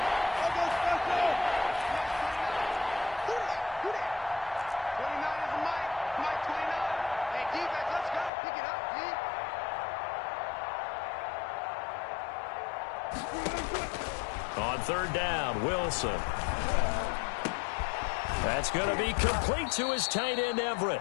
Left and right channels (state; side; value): drops out; right; at 8.3 s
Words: On 3rd down, Wilson. That's going to be complete to his tight end, Everett.